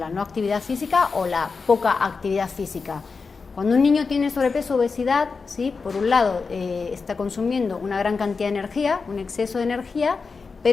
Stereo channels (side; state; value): right; quieter; 4.7 dB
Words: no actividad física o la poca actividad física. Cuando un niño tiene sobrepeso o obesidad, ¿sí?, por un lado está consumiendo una gran cantidad de energía, un exceso de energía,